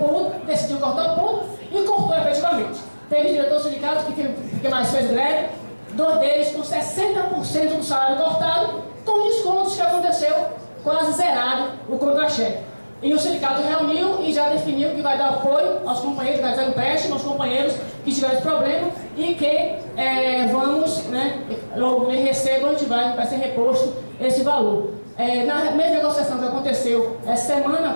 decidiu cortar o ponto e cortou efetivamente. Teve diretor sindicato que mais fez greve, 2 deles com 60% do salário cortado, com descontos que aconteceu quase zerado o contra-cheque. E o sindicato reuniu e já definiu que vai dar apoio aos companheiros, vai dar empréstimo aos companheiros que tiveram esse problema e que vamos, né, logo que recebam, vai ser reposto esse valor. Na mesma negociação que aconteceu essa semana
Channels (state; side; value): inverted; both; correlation -1.00